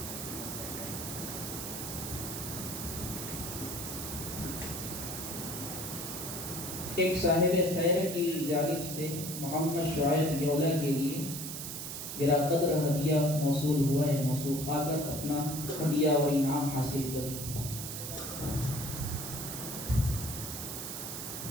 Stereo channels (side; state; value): right; noise; hiss, 6 dB below the sound